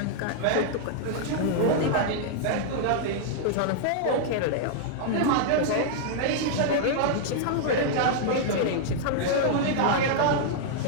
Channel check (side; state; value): both; different; correlation -0.01